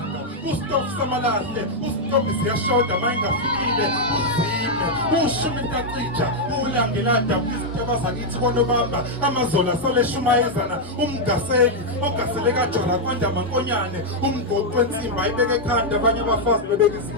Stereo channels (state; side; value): normal; both; correlation -0.02